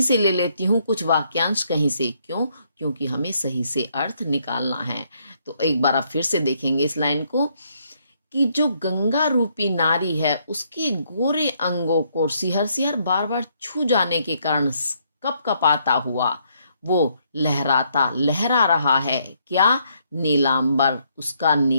से ले लेती हूँ, कुछ वाक्यांश कहीं से। क्यों? क्योंकि हमें सही से अर्थ निकालना है। तो एक बार आप फिर से देखेंगे इस लाइन को कि जो गंगा रूपी नारी है उसके गोरे अंगों को सिहर सिहर बार बार छू जाने के कारण कपकपाता हुआ वो लहराता, लहरा रहा है। क्या? नीलांबर, उसका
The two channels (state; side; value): inverted; both; correlation -0.72